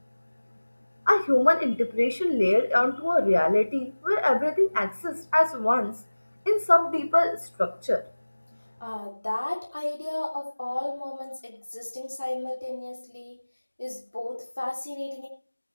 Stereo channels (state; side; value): inverted; both; correlation -1.00